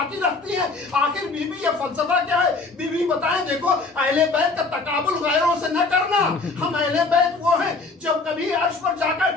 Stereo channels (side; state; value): right; quieter; 3.8 dB